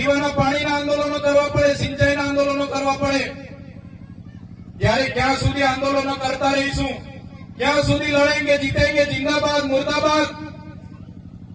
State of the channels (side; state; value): both; identical; correlation 1.00